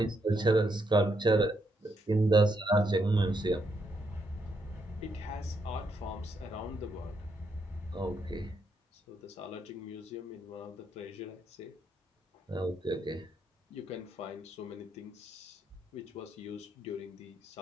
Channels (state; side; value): normal; both; correlation 0.78